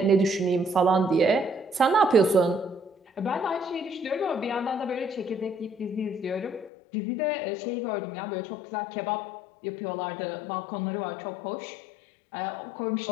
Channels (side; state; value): right; drops out; at 6.7 s